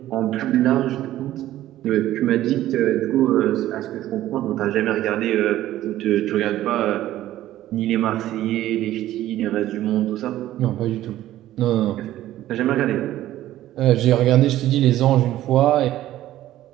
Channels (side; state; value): left; quieter; 14.0 dB